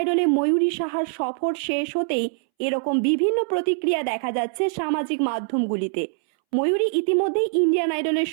ময়ূরী সাহার সফর শেষ হতেই এরকম বিভিন্ন প্রতিক্রিয়া দেখা যাচ্ছে সামাজিক মাধ্যমগুলিতে। ময়ূরী ইতিমধ্যেই ইন্ডিয়ান আইডলের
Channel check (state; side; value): silent; left; 63 dB below the other